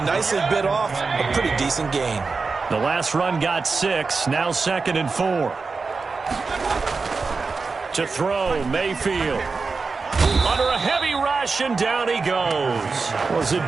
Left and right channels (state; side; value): quieter; left; 4.4 dB